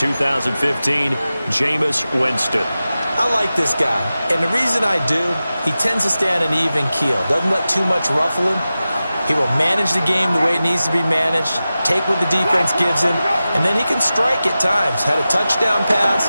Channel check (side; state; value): both; inverted; correlation -0.94